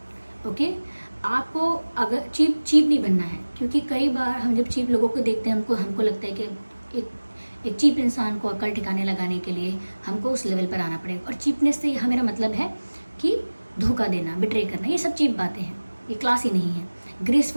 ओके, आपको अगर चीप नहीं बनना है, क्योंकि कई बार हम जब चीप लोगों को देखते हैं हमको लगता है कि एक चीप इंसान को अकल ठिकाने लगाने के लिए हमको उस लेवल पर आना पड़ेगा। और चीपनेस से यहाँ मेरा मतलब है कि धोखा देना, बिट्रे करना, ये सब चीप बातें हैं, ये क्लास ही नहीं है,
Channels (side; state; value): both; inverted; correlation -1.00